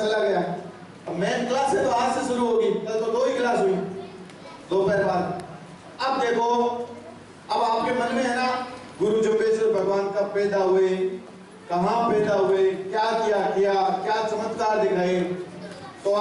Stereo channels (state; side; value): identical; both; correlation 1.00